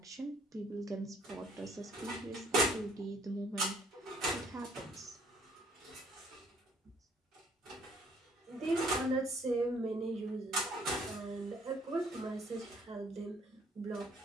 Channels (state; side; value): normal; both; correlation 0.61